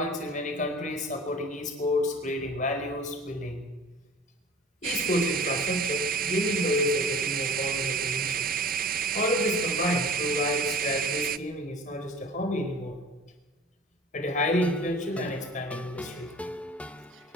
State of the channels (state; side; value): normal; both; correlation 0.43